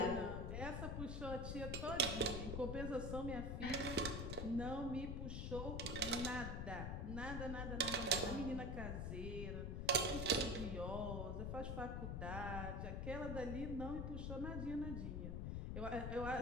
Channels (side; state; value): left; noise; rumble, 2 dB below the sound